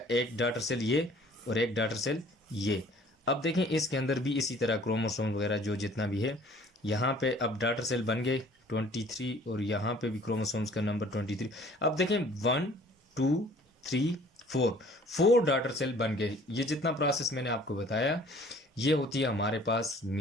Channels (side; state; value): both; normal; correlation 0.53